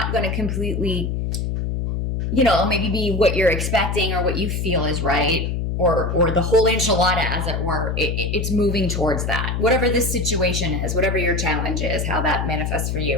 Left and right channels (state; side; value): noise; left; hum, 1 dB below the sound